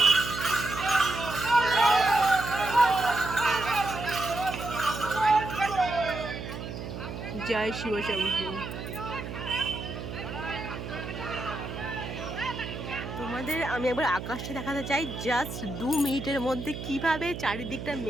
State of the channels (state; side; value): noise; right; hum, 8 dB below the sound